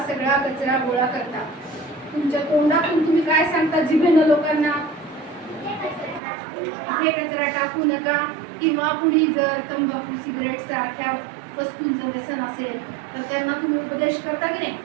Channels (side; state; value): left; drops out; at 6.2 s